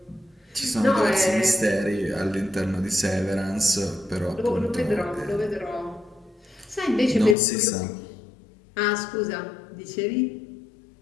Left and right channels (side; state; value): right; drops out; at 7.4 s